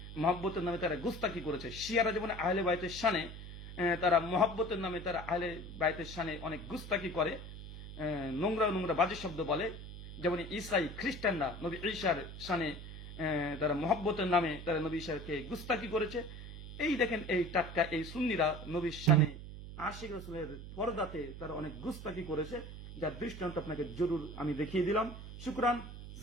মহব্বতের নামে তারা গুস্তাকি করেছে। শিয়ারা যেমন আহলে বাইতের শানে, তারা মহব্বতের নামে তারা আহলে বাইতের শানে অনেক গুস্তাকি করে, নোংরা নোংরা বাজে শব্দ বলে। যেমন ঈসাই খ্রিস্টানরা নবী ঈসার শানে তারা মহব্বতের নামে তারা নবী ঈসাকে গুস্তাকি করেছে। এই দেখেন এই টাটকা এই সুন্নিরা নবীর শানে আশিক রাসূলের পর্দাতে তারা অনেক গুস্তাকি করেছে, যার দৃষ্টান্ত আপনাকে জরুর আমি দেখিয়ে দিলাম। শুকরান,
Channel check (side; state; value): right; noise; hum, 11 dB below the sound